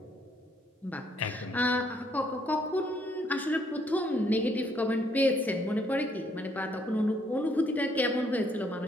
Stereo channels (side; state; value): both; normal; correlation 0.69